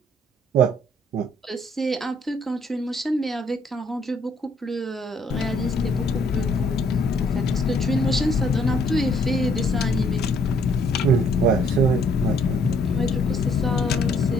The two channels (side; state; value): both; normal; correlation 0.65